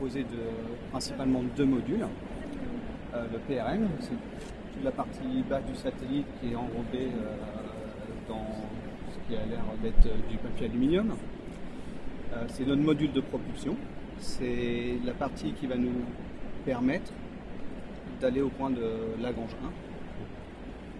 principalement de deux modules. Le PRN, c'est toute la partie basse du satellite qui est enrobée dans ce qui a l'air d'être du papier aluminium. C'est notre module de propulsion. C'est la partie qui va nous permettre d'aller au point de Lagrange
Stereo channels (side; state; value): both; identical; correlation 1.00